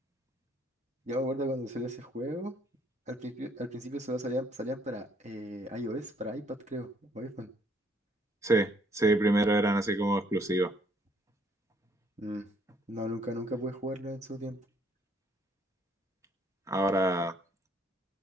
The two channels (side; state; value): both; normal; correlation 0.66